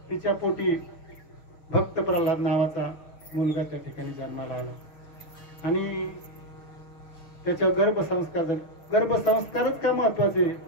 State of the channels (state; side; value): late; right; 6.5 ms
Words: तिच्या पोटी भक्त प्रल्हाद नावाचा मुलगा त्या ठिकाणी जन्माला आला. आणि त्याच्या गर्भसंस्कार झाले. गर्भसंस्कारच का महत्वाचे?